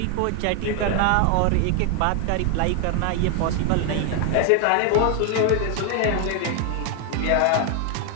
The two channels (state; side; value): different; both; correlation 0.00